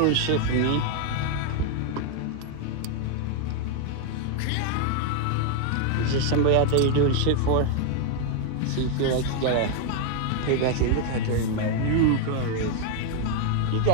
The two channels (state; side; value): different; both; correlation 0.00